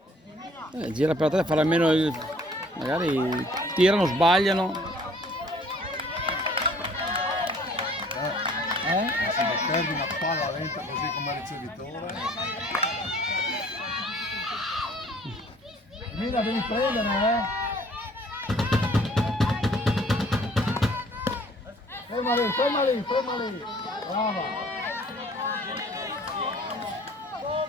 Gira per te, fare almeno il... magari tirano, sbagliano. Se mi perdi una palla lenta così come ricevitore. Mira, devi prendere, Ferma lì, ferma lì, ferma lì. Brava.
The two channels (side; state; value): both; normal; correlation 0.56